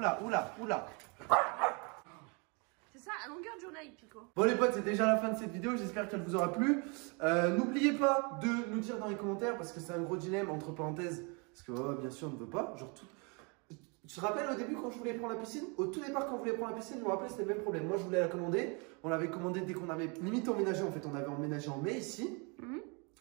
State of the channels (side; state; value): left; quieter; 32.5 dB